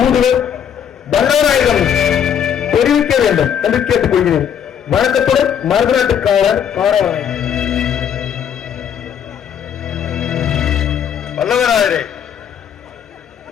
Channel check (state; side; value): quieter; right; 8.6 dB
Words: வல்லவராயிடம் தெரிவிக்க வேண்டும் என்று கேட்டுக்கொள்கிறேன். வணக்கத்துடன் மருதநாட்டுக்காரர் காடவராயன். வல்லவராயரே,